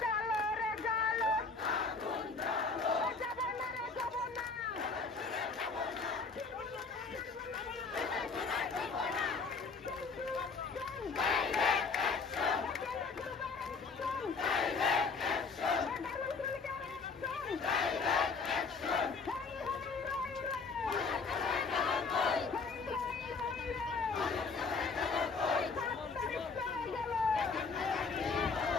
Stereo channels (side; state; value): right; quieter; 4.6 dB